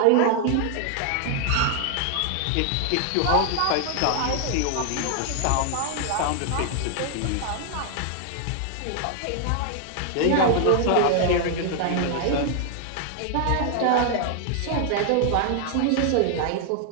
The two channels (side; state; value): both; different; correlation 0.00